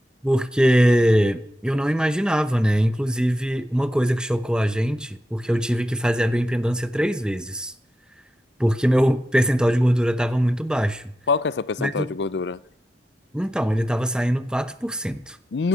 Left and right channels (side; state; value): both; normal; correlation 0.89